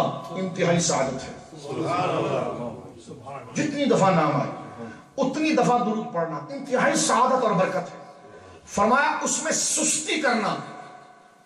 انتہائی سعادت ہے. جتنی دفعہ نام آئے اتنی دفعہ درود پڑھنا انتہائی سعادت اور برکت ہے. فرمایا اس میں سستی کرنا،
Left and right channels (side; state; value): both; identical; correlation 1.00